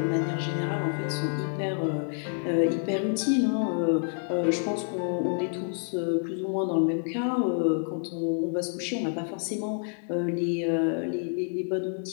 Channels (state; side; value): silent; right; 59 dB below the other